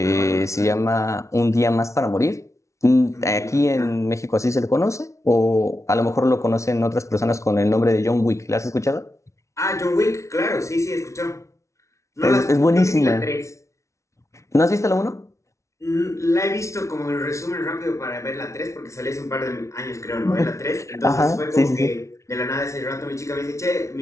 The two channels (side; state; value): right; late; 0.14 ms